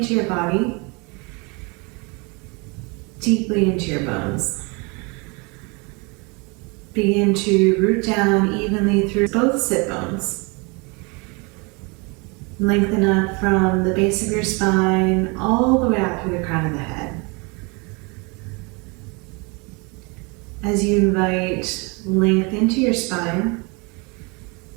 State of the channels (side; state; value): left; quieter; 29.8 dB